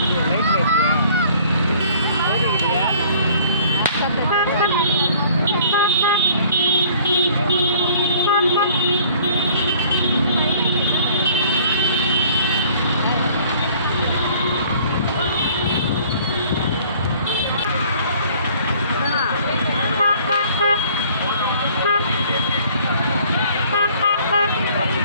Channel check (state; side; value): inverted; both; correlation -0.55